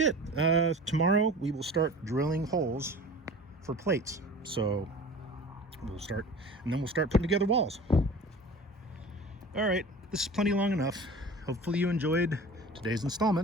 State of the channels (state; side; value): normal; both; correlation 0.39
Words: it. Tomorrow we will start drilling holes for plates. So we'll start putting together walls. All right, this is plenty long enough. Hopefully you enjoyed today's